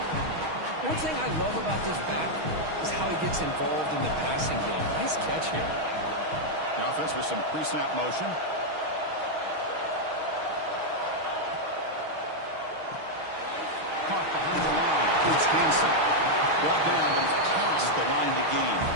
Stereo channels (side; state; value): left; late; 6.3 ms